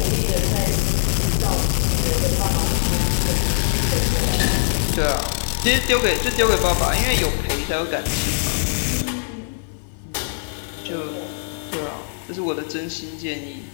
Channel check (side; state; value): right; silent; digital silence